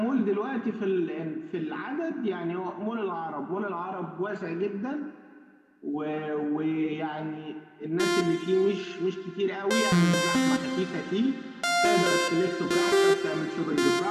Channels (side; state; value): both; identical; correlation 1.00